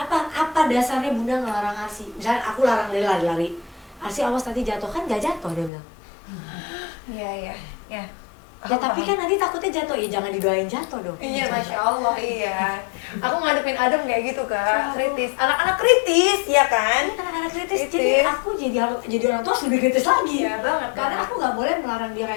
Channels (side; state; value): right; drops out; at 5.7 s